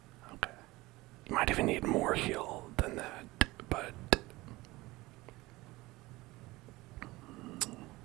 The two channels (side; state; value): left; quieter; 20.4 dB